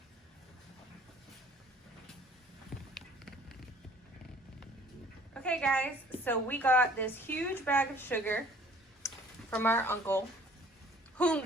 Okay guys, so we got this huge bag of sugar from our uncle, whom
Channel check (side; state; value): both; normal; correlation 0.53